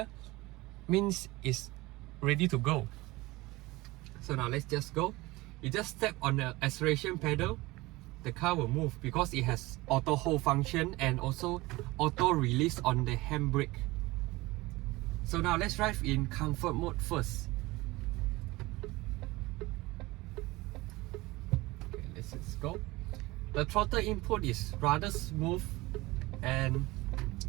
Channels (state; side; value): quieter; left; 20.8 dB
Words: means it's ready to go. So now let's just go. You just step on the acceleration pedal, the car will move because it has auto hold function and also auto release on the handbrake. So now let's drive in comfort mode first. Okay, let's just go. The throttle input is rather smooth, and